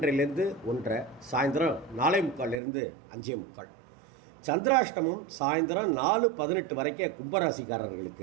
1:30, சாயந்தரம் 4:45 5:45. சந்திராஷ்டமம் சாயந்தரம் 4:18 வரைக்கும்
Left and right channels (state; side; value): drops out; left; at 2.6 s